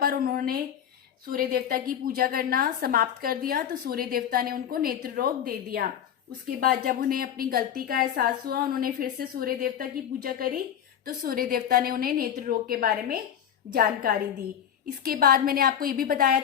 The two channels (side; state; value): right; quieter; 9.4 dB